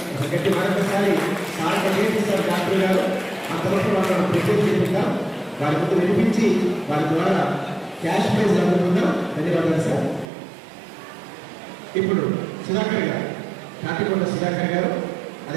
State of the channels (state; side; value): drops out; left; at 10.2 s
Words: గట్టి మరొకసారి సార్ ప్రయత్నిస్తారు డాక్టర్ గారు. అంతవరకు వాళ్ళని ప్రజెంట్ చేద్దాం, వారి ముందు వినిపించి వారి ద్వారా క్యాష్ ప్రైజ్ అందుకుందాం. ధన్యవాదాలు సార్. ఇప్పుడు సుధాకర్ గారు, తాటికొండ సుధాకర్ గారు,